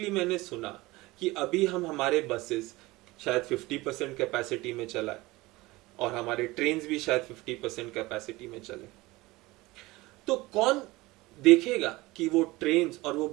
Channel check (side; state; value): left; quieter; 20.6 dB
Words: मैंने सुना कि अभी हम हमारे बसेस शायद 50% कैपेसिटी में चलाए और हमारे ट्रेन्स भी शायद 50% कैपेसिटी में चले। तो कौन देखेगा कि वो ट्रेन्स और वो